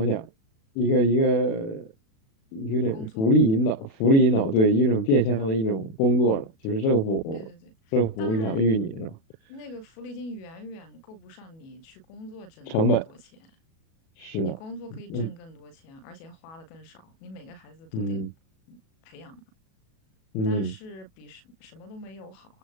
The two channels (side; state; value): right; late; 37 ms